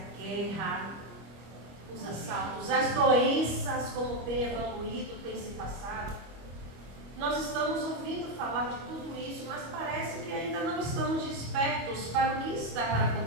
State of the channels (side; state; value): left; late; 25 ms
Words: guerra, os assaltos, as doenças, como tem evoluído, tem se passado. Nós estamos ouvindo falar de tudo isso, mas parece que ainda não estamos despertos para o que está para